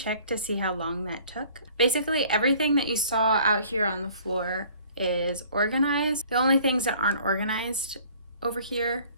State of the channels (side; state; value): both; inverted; correlation -0.54